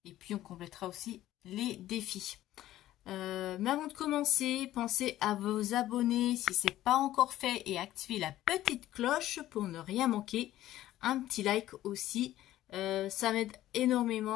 Et puis on complétera aussi les défis. Mais avant de commencer, pensez à vous abonner si ce n'est pas encore fait et activer la petite cloche pour ne rien manquer. Un petit like aussi, ça m'aide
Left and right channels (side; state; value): right; quieter; 14.1 dB